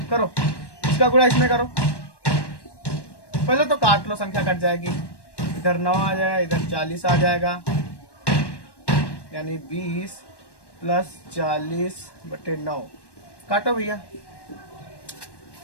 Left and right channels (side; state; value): right; late; 1.1 ms